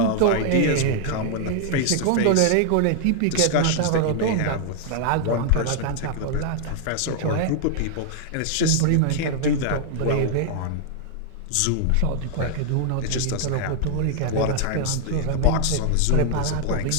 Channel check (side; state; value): both; different; correlation -0.01